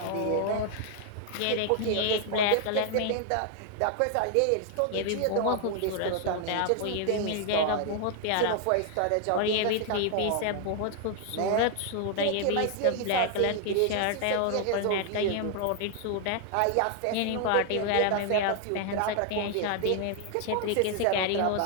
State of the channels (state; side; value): different; both; correlation 0.00